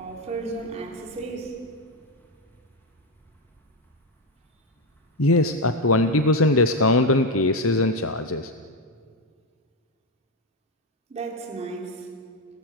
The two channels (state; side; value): normal; both; correlation 0.09